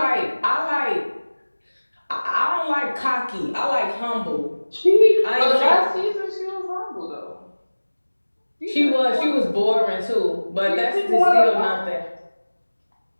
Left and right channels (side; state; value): both; inverted; correlation -1.00